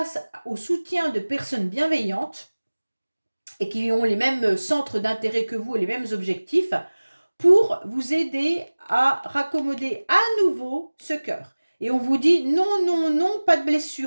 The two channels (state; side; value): inverted; both; correlation -1.00